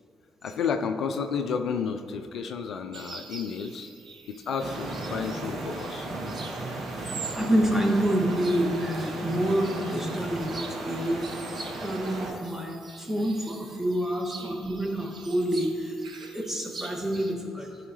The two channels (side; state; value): both; normal; correlation 0.79